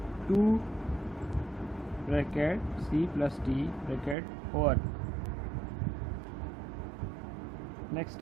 2 bracket c plus d bracket over. Next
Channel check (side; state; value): left; drops out; at 4.2 s